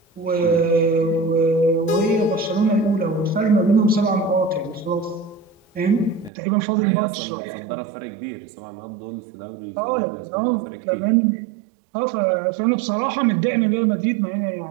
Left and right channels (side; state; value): left; drops out; at 6.3 s